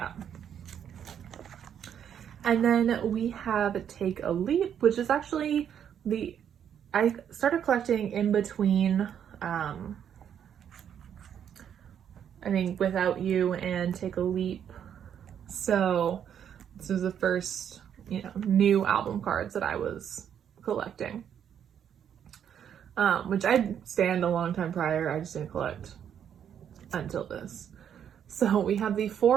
And then we have Take a Leap, which is actually I started collecting in between, I think Without You and Take a Leap. So this was the first, new album cards that I was collecting. Which I'd stand a long time prior, I just didn't collect until this. So we have the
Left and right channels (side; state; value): left; quieter; 8.9 dB